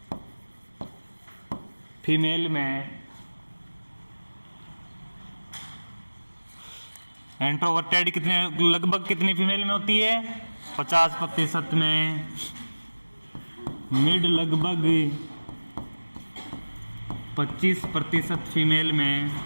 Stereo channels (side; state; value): both; inverted; correlation -1.00